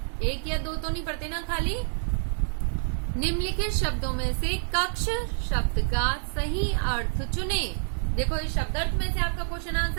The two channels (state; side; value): silent; left; digital silence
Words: 1 या 2 तो नहीं पढ़ते ना खाली। निम्नलिखित शब्दों में से कक्ष शब्द का सही अर्थ चुने। देखो इस शब्दार्थ में से आपका क्वेश्चन